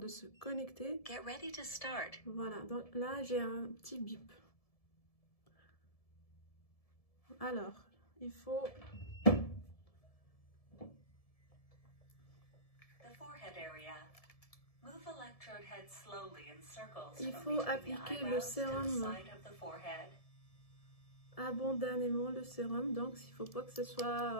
se connecter. Get ready to start. Voilà, donc là, j'ai un petit bip. Alors, il faut... The forehead area. Move electrode head slowly in circles. Il faut appliquer le sérum abondamment, le sérum, donc il ne faut pas que ce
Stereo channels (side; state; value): right; late; 1.7 ms